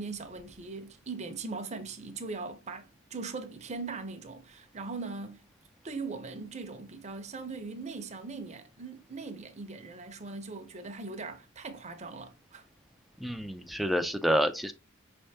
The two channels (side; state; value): both; normal; correlation 0.64